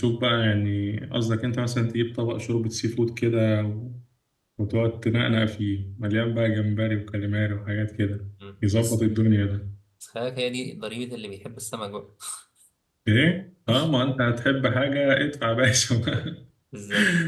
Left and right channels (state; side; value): identical; both; correlation 1.00